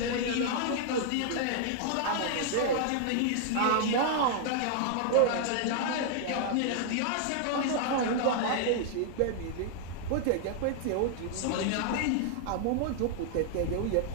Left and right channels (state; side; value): different; both; correlation 0.00